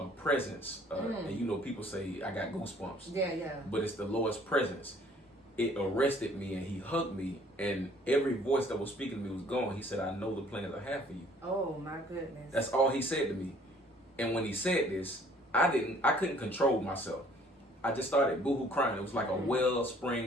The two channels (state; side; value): normal; both; correlation 0.57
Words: presence. And you know, people say I got goosebumps. Yeah, yeah. But it's the Lord's presence. It arrested me and he hugged me, and every voice that was speaking to me was gone. He said, I know the plans I have for you. Oh my goodness. That's all he said to me. And when he said this, I couldn't control myself. I just started boohoo crying. It was like a